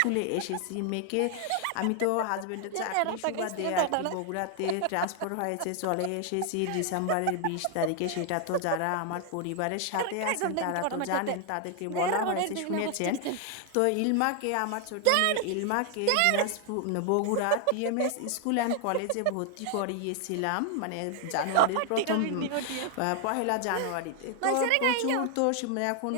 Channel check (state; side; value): different; both; correlation 0.00